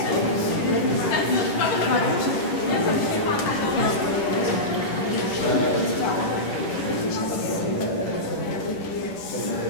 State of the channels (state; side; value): late; right; 10 ms